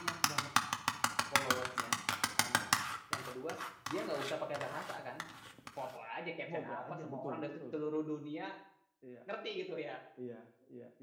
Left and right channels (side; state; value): both; identical; correlation 1.00